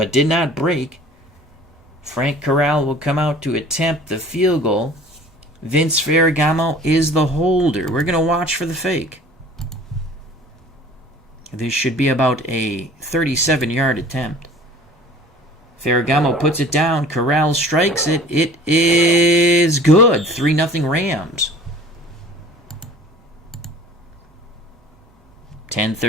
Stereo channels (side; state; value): both; normal; correlation 0.46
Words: did not break. Frank Corral will come out to attempt the field goal. Vince Ferragamo is the holder. We're going to watch for the fake. This should be about a 37-yard attempt. Ferragamo puts it down. Corral strikes it. It is good. 3-0 Rams.